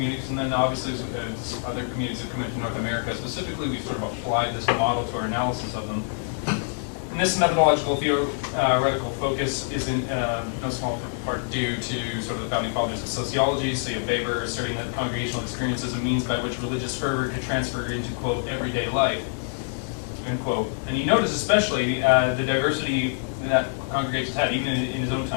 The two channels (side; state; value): right; silent; 61 dB below the other